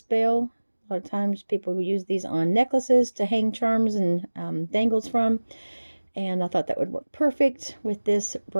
bail. A lot of times people use these on necklaces to hang charms and dangles from, and I thought that would work perfect with this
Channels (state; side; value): inverted; both; correlation -1.00